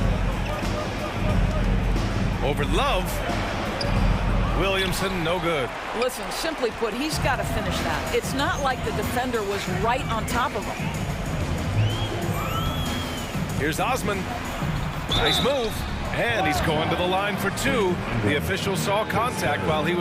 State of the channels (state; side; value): identical; both; correlation 1.00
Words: Over Love. Williamson, no good. Listen, simply put, he's got to finish that. It's not like the defender was right on top of him. Here's Osman. Nice move. And he's going to the line for two. The official saw contact while he